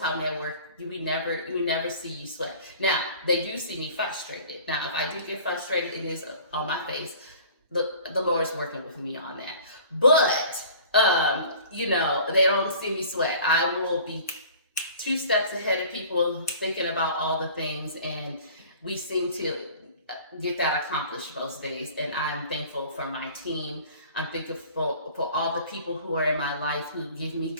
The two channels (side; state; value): both; inverted; correlation -0.46